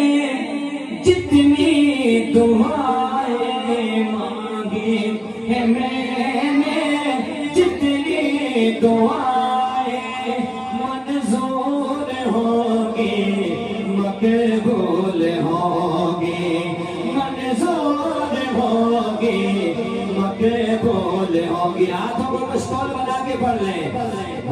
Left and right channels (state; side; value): identical; both; correlation 1.00